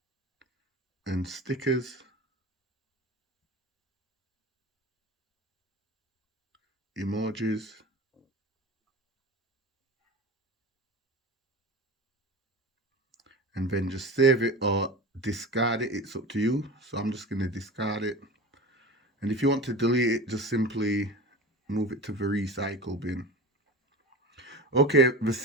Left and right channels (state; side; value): normal; both; correlation 0.31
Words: And stickers. Emojis. And then just save it or discard it, it's up to you. So I'm just going to discard it. And if you want to delete it, just simply move it to the recycle bin. Okay, the